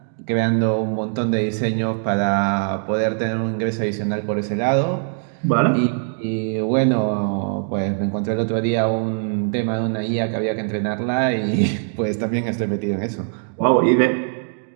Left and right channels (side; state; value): left; silent; 57 dB below the other